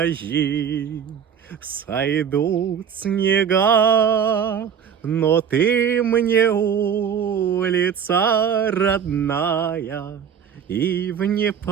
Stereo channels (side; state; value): left; quieter; 7.9 dB